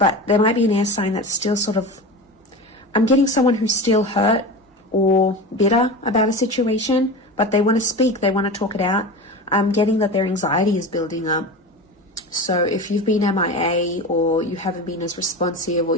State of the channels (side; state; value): both; normal; correlation 0.28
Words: there might be an air sign that's still sort of... I'm getting someone who's still hurt or bitter about a situation, but they want to speak. They want to talk it out. I'm getting that their anxiety is building up. So if you've been MIA, or you haven't been as responsive, or